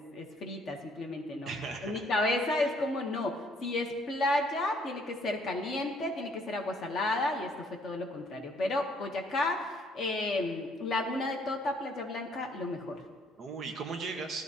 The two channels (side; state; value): both; normal; correlation 0.64